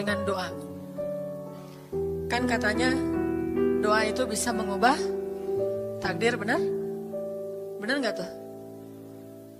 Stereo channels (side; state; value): both; identical; correlation 1.00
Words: doa. Kan katanya doa itu bisa mengubah takdir, benar? Benar nggak tuh?